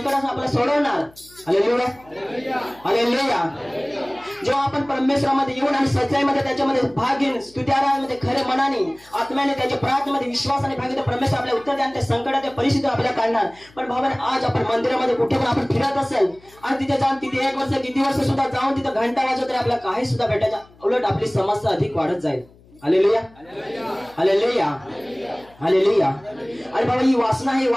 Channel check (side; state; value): left; noise; hum, 27 dB below the sound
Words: आपल्याला सोडवणार. Hallelujah, hallelujah. जेव्हा आपण परमेश्वरामध्ये येऊन आणि सच्चाईमध्ये त्याच्यामध्ये भाग घेऊन स्तुत्याराधनेमध्ये खरे मनाने आत्म्याने त्याच्या प्रार्थनेमध्ये विश्वासाने भाग घेतो, परमेश्वर आपल्याला उत्तर द्या आणि त्या संकटाच्या परिस्थिती आपल्याला काढणार. पण भावाने आज आपण मंदिरामध्ये कुठे पण आपण फिरत असेल आणि तिथे जाऊन तिथे 1 वर्ष किती वर्ष सुद्धा जाऊन तिथे घंटा वाजवत तरी आपल्याला काही सुद्धा भेटायचं, उलट आपली समस्या अधिक वाढत जाईल. Hallelujah, hallelujah, hallelujah. आणि बाबा ही वासना आहे,